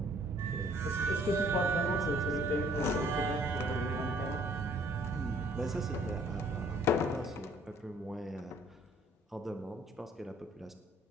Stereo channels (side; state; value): both; normal; correlation 0.60